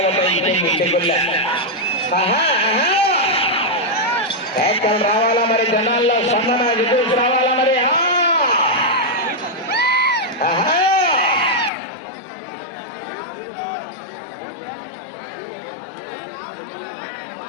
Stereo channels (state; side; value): drops out; right; at 11.7 s